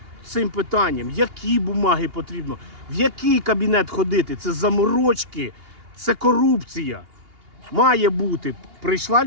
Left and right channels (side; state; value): left; late; 2.8 ms